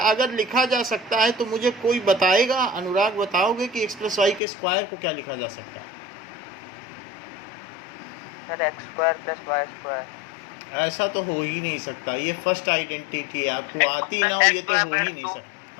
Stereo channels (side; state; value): right; drops out; at 4.4 s